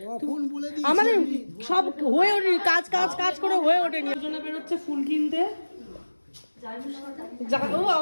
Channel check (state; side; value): inverted; both; correlation -1.00